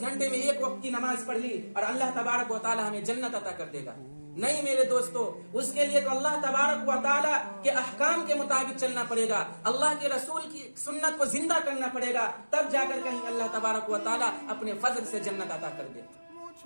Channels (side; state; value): both; inverted; correlation -1.00